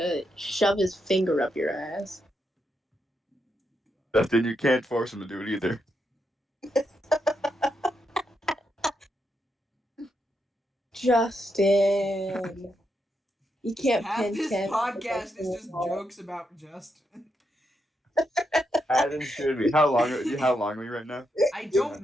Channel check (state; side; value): normal; both; correlation 0.82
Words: shove his finger up your ass. Justin, you can't force him to do it either. Justin, you can't Half pin this Kent. podcast is just jokes about Justin. As it should be. How long are we right now? I don't